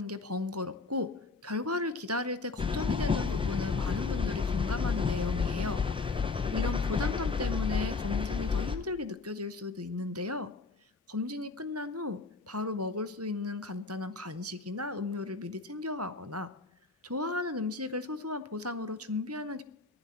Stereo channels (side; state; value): right; quieter; 3.8 dB